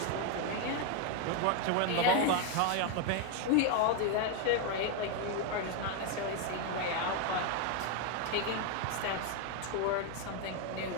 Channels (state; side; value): different; both; correlation 0.01